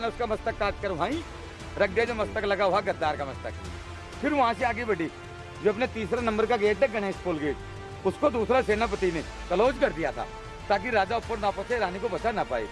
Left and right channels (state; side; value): identical; both; correlation 1.00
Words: उसका मस्तक काट कर वहीं रख दिया, जो मस्तक लगा हुआ गद्दार का मस्तक। फिर वहां से आगे बढ़ी, जो अपने तीसरा नंबर का गेट है गणेश पोल गेट, उसको दूसरा सेनापति ने क्लोज कर दिया था ताकि राजा ऊपर ना पहुंचे, रानी को बचा ना पाए।